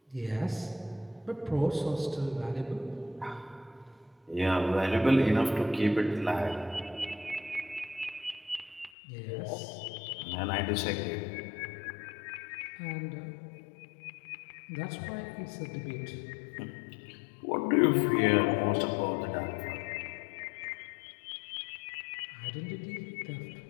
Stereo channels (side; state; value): right; drops out; at 8.9 s